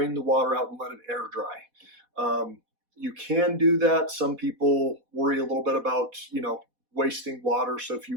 the water out, and let it air dry. You can do that. Some people worry a little bit about, wasting water. So if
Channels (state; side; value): late; left; 4.1 ms